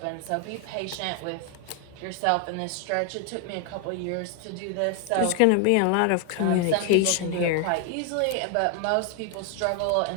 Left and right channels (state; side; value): different; both; correlation 0.00